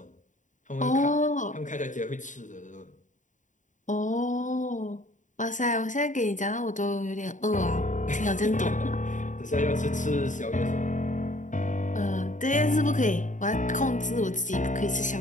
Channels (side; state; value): right; late; 0.36 ms